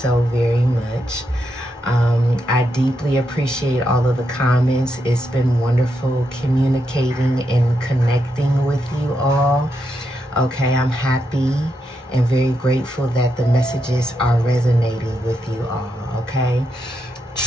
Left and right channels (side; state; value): both; normal; correlation 0.83